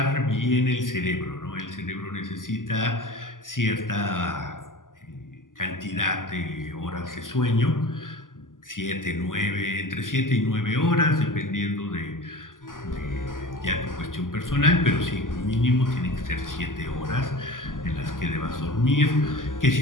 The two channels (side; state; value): right; late; 0.88 ms